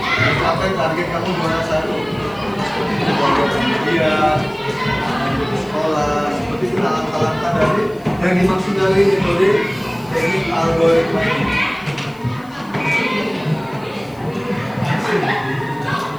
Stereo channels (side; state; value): left; noise; hiss, 28 dB below the sound